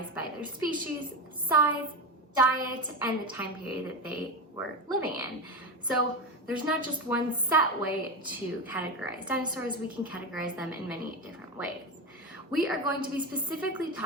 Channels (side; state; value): both; normal; correlation 0.19